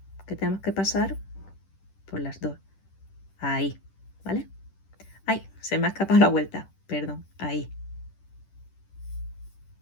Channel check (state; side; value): late; right; 10 ms